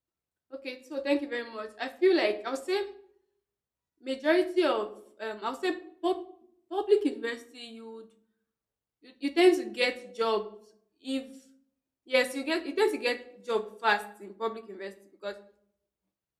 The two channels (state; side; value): identical; both; correlation 1.00